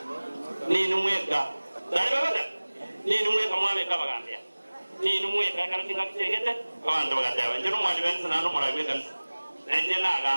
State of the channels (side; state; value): both; inverted; correlation -1.00